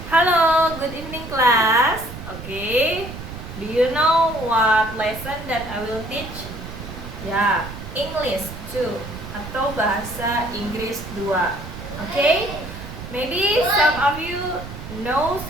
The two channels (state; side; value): noise; right; rumble, 11 dB below the sound